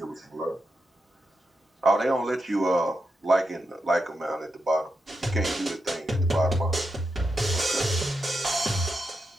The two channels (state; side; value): normal; both; correlation 0.86